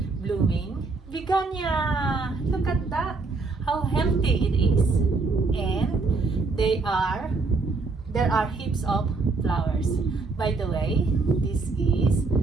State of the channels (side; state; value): left; quieter; 4.0 dB